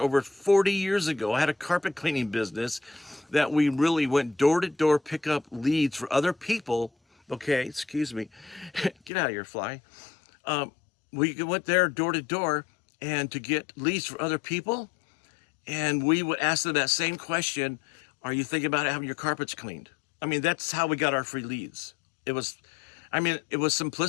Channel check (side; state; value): right; drops out; at 9.1 s